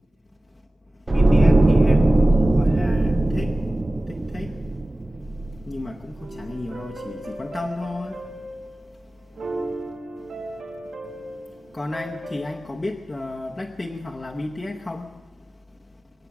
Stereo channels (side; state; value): both; normal; correlation 0.96